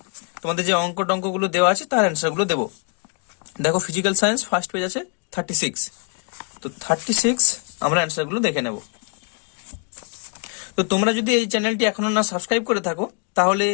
তোমাদের যে টঙ্কগুলো দেওয়া আছে তার অ্যান্সারগুলো দেবো। দেখো, ফিজিক্যাল সায়েন্স ফার্স্ট পেজ আছে 36, তো 36 আমরা অ্যান্সারগুলো দেখে নেব। তো তোমরা যদি এই চ্যানেলটি এখনো না সাবস্ক্রাইব করে থাকো, তাহলে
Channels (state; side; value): quieter; right; 37.2 dB